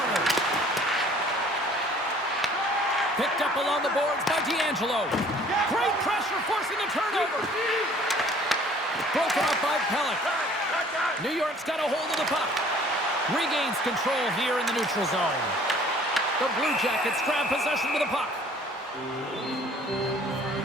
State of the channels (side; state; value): both; normal; correlation 0.54